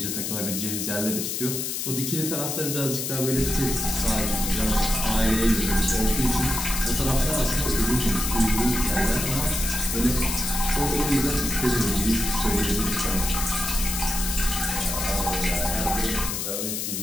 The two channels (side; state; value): left; noise; hiss, 3 dB below the sound